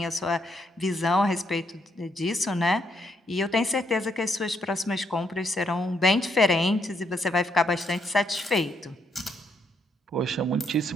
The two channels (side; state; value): both; normal; correlation 0.75